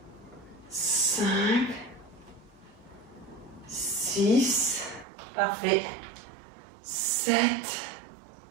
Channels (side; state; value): left; drops out; at 5.1 s